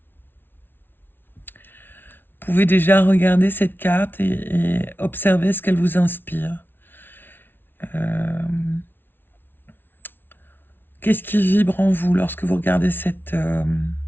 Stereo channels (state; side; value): late; right; 0.10 ms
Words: Vous pouvez déjà regarder cette carte et observer ce qu'elle vous inspire. Qu'est-ce qui vibre en vous lorsque vous regardez cette